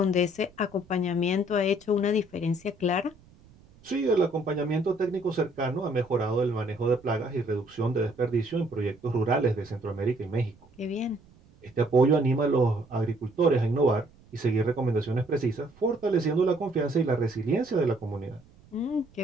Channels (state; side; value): noise; right; rumble, 27 dB below the sound